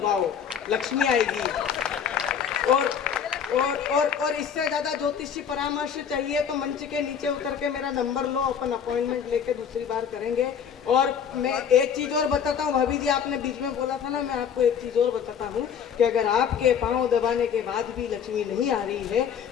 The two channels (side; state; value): right; quieter; 7.7 dB